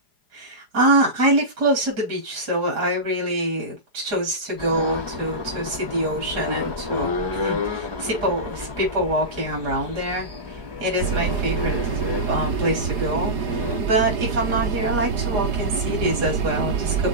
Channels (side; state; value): left; late; 4.9 ms